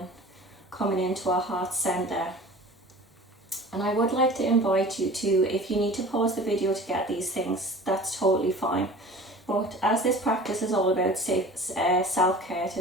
coming into our heart center. And I would like to invite you to, if you need to pause the video to get these things, that's totally fine. But as this practice is all about self-care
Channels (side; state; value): both; normal; correlation 0.41